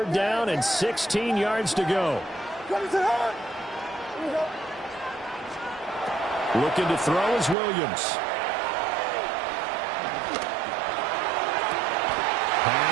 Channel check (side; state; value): left; drops out; at 7.6 s